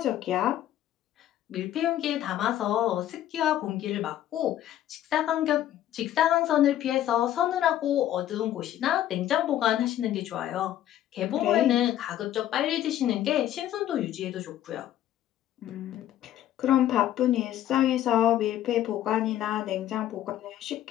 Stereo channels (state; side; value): quieter; right; 12.2 dB